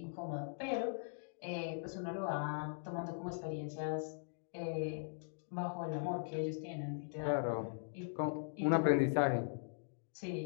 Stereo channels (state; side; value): silent; right; digital silence